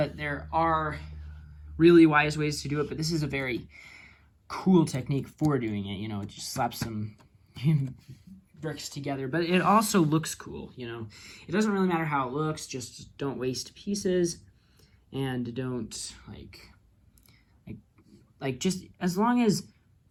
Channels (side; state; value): both; identical; correlation 1.00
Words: there are really wise ways to do it, but this is a very cool technique for doing it. You know, just slap some bricks together, but it also looks cool. You know, it doesn't really matter how it looks, just don't waste pieces, and don't like just as long as